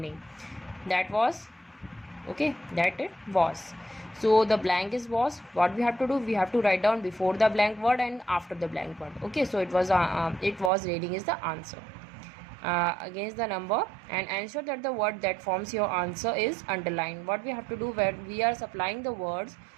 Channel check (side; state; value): left; drops out; at 10.7 s